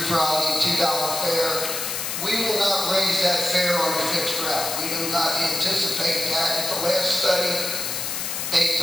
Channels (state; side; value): noise; left; hiss, 3 dB below the sound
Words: Friday, $2 fare. We will not raise that fare on a fixed route. We do not anticipate that. At the last study, they